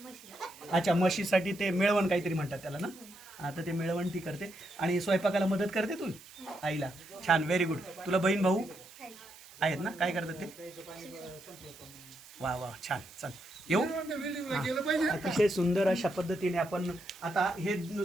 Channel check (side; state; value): right; noise; hiss, 21 dB below the sound